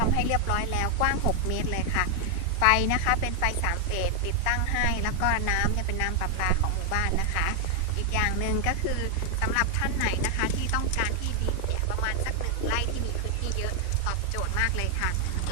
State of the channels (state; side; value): different; both; correlation 0.00